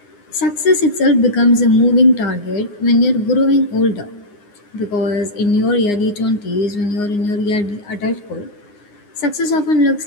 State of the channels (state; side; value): late; right; 9.7 ms